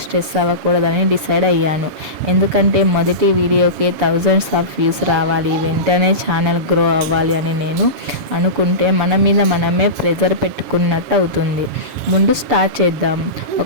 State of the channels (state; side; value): late; left; 7.2 ms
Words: అవ్వకూడదని డిసైడ్ అయ్యాను. ఎందుకంటే మొదటి వీడియోకే thousands of వ్యూస్ రావాలి, వెంటనే ఛానల్ గ్రో అవ్వాలి అని నేను అనుకుంటే మన మీద మనమే ప్రెజర్ పెట్టుకున్నట్టు అవుతుంది. ముందు స్టార్ట్ చేద్దాం,